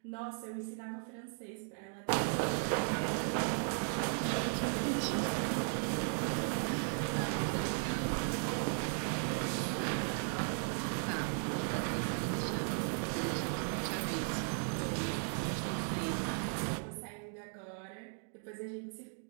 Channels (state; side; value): silent; left; 53 dB below the other